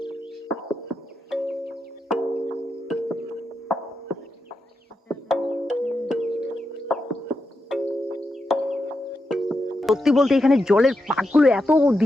সত্যি বলতে এখানে জলের পাকগুলো এত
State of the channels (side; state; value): both; normal; correlation 0.86